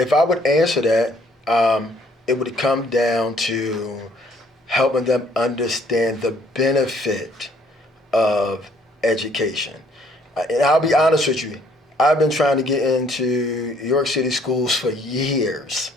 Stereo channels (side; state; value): both; normal; correlation 0.63